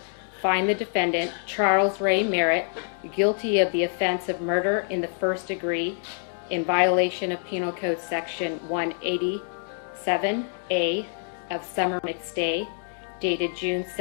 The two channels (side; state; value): right; silent; 61 dB below the other